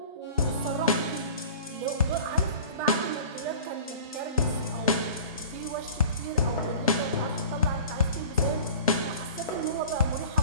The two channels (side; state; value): both; inverted; correlation -0.41